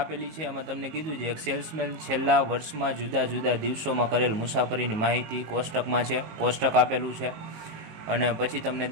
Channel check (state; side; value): late; left; 19 ms